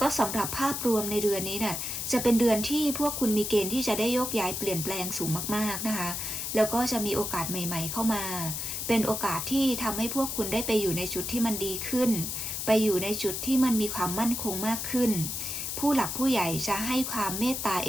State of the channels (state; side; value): noise; left; hiss, 3 dB below the sound